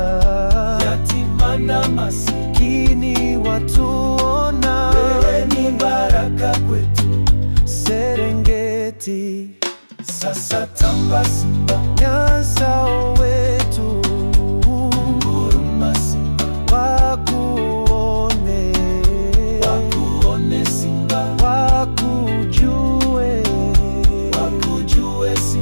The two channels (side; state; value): both; inverted; correlation -1.00